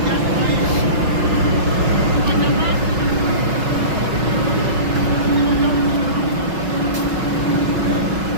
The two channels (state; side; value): late; left; 5.4 ms